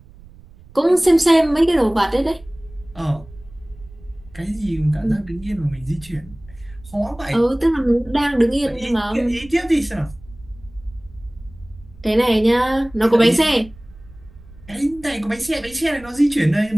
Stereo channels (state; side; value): noise; right; rumble, 22 dB below the sound